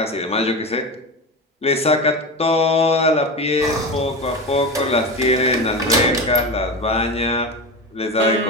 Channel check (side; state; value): both; normal; correlation 0.23